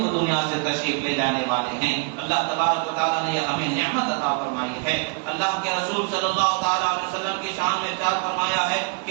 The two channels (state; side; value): quieter; left; 34.0 dB